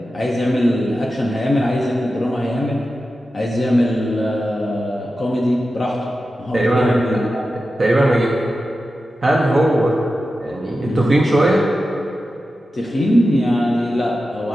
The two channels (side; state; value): both; normal; correlation 0.92